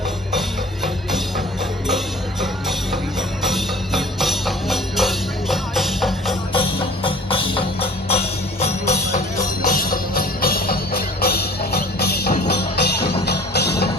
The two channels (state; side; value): normal; both; correlation 0.47